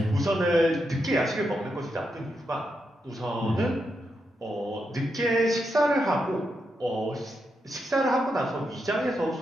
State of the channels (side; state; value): both; normal; correlation 0.84